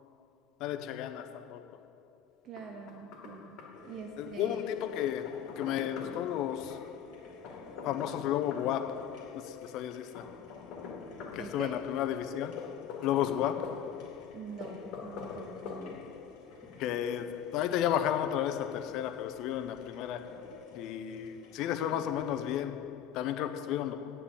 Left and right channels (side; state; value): right; quieter; 9.3 dB